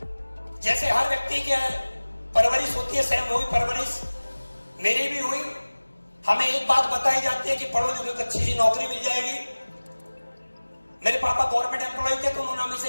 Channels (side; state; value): both; inverted; correlation -1.00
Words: जैसे हर व्यक्ति की परवरिश होती है, सेम वही परवरिश मेरी भी हुई। हमें एक बात बताई जाती है कि पढ़ो लिखो तो अच्छी सी नौकरी मिल जाएगी। मेरे पापा गवर्नमेंट एम्प्लॉय थे तो उन्होंने हमें से